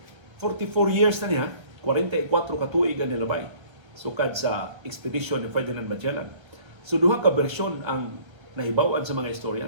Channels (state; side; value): late; left; 1.3 ms